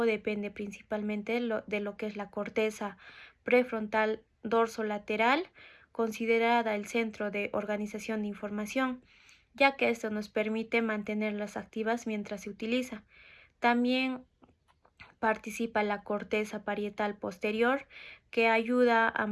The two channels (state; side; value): identical; both; correlation 1.00